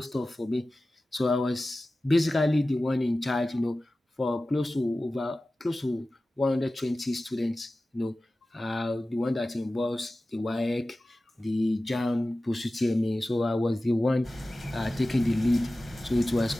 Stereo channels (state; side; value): normal; both; correlation 0.96